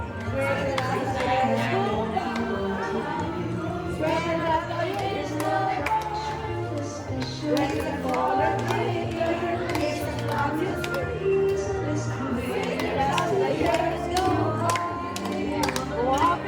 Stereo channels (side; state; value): both; identical; correlation 1.00